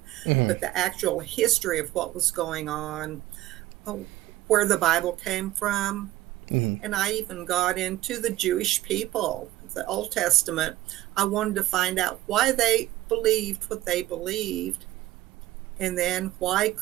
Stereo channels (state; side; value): quieter; left; 15.9 dB